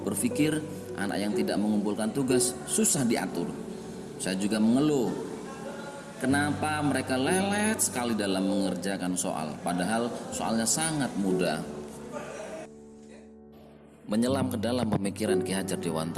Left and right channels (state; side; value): identical; both; correlation 1.00